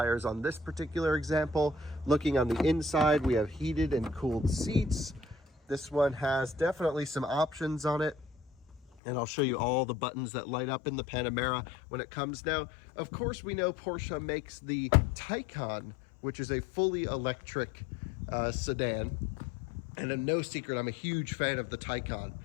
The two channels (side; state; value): right; drops out; at 8.8 s